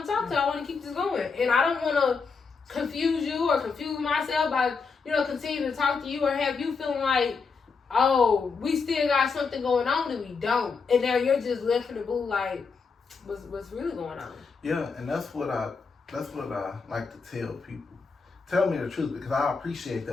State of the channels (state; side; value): quieter; right; 5.0 dB